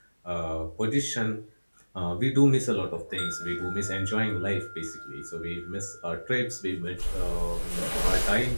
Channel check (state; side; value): inverted; both; correlation -1.00